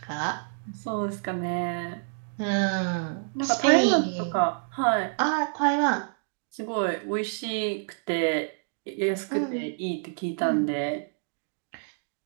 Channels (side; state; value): left; silent; digital silence